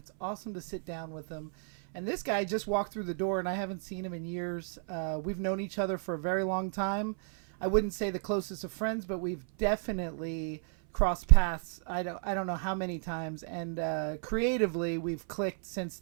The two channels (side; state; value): left; silent; 56 dB below the other